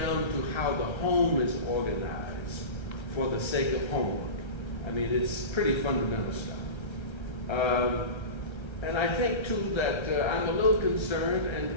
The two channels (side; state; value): right; late; 1.3 ms